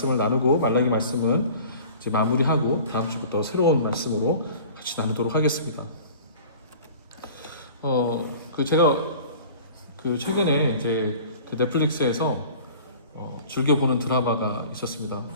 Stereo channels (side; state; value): both; inverted; correlation -0.44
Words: 나누고 말라기 말씀은 이제 마무리하고 다음 주부터 새로운 말씀으로 같이 나누도록 하겠습니다. 제가 최근에 이제 넷플릭스에서 즐겨보는 드라마가 있었습니다.